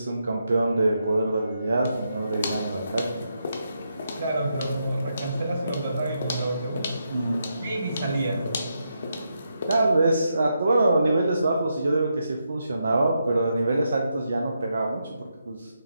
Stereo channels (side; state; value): both; inverted; correlation -0.82